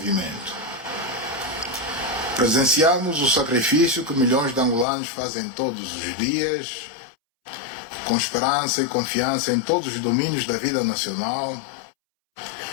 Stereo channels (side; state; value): right; drops out; at 4.9 s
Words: Presenciamos o sacrifício que milhões de angolanos fazem todos os dias, com esperança e confiança em todos os domínios da vida nacional,